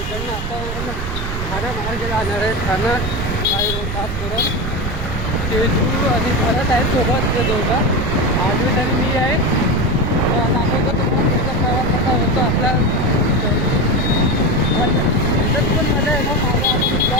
आपण ठाणा मार्गे जाणार आहे. ठाणा काही रोड पास करत तेजू आणि भरत आहे सोबत. ते दोघं आद्वैत आणि मी आहे. दाखवतो तुम्हाला त्याचा प्रवास कसा होतो आपला. त्याच्यात पण मला आहे ना माझा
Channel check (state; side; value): noise; right; rumble, 5 dB below the sound